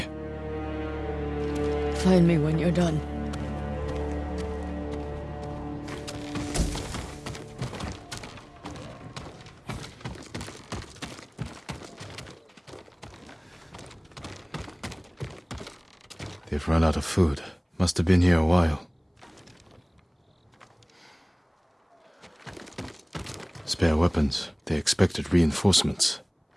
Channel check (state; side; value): identical; both; correlation 1.00